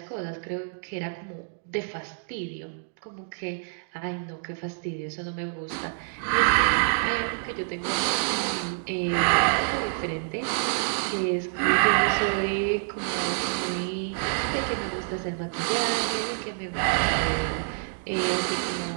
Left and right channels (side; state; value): left; silent; digital silence